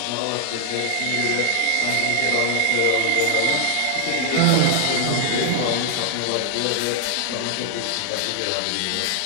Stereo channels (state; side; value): different; both; correlation 0.00